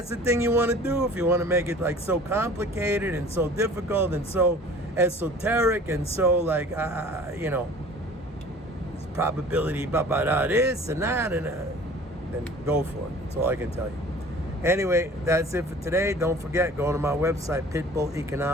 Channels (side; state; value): both; normal; correlation 0.46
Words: the thing you want to do, if you want to make it like so complicated and so difficult and so esoteric and so like, it's probability, this and that, and then go for it. That's all I can tell you. Anyway, that's it for today. Don't forget, go to my website,